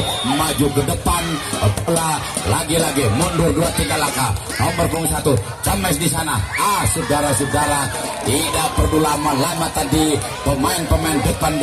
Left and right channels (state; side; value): identical; both; correlation 1.00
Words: maju ke depan, bola lagi-lagi mundur 2-3 langkah, nomor punggung 1 James di sana. Saudara-saudara, tidak perlu lama-lama tadi, pemain-pemain depan